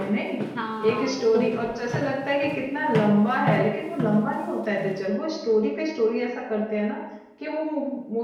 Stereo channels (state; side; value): identical; both; correlation 1.00